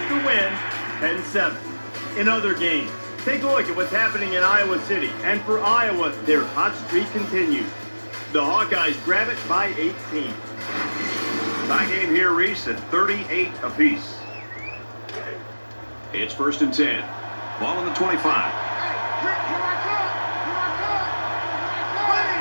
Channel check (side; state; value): both; inverted; correlation -1.00